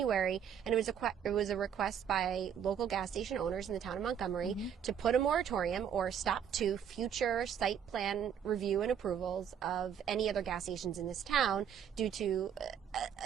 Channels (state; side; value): quieter; left; 8.4 dB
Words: and it was a request by local gas station owners in the town of Montgomery to put a moratorium or stop to future site plan review and approvals of any other gas stations in this town due to